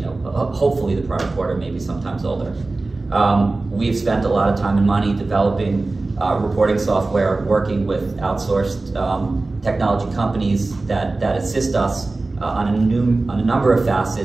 hopefully the prior quarter, maybe sometimes older. We've spent a lot of time and money developing reporting software, working with outsourced technology companies that assist us on a number of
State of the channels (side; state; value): left; quieter; 3.3 dB